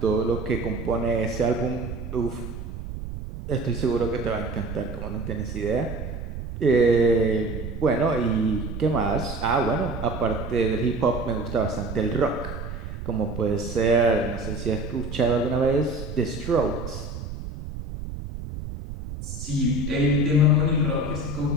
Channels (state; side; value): noise; right; rumble, 8 dB below the sound